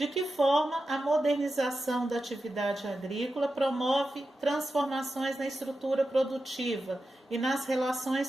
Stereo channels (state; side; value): normal; both; correlation 0.91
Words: que forma a modernização da atividade agrícola promove transformações na estrutura produtiva e nas